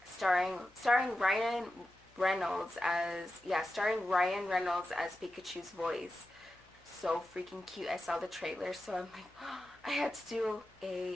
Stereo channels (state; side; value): noise; left; hum, 29 dB below the sound